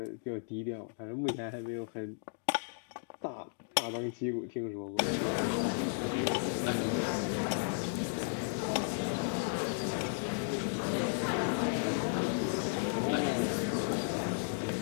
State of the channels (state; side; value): silent; right; digital silence